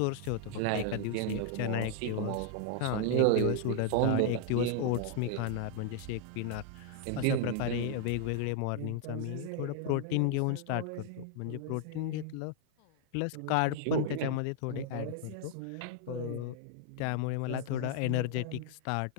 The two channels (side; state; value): both; different; correlation 0.00